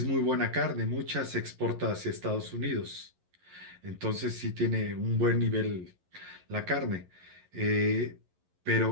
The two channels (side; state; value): left; late; 11 ms